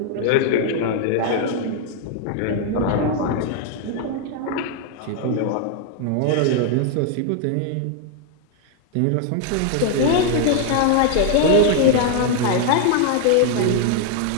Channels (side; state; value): both; different; correlation 0.00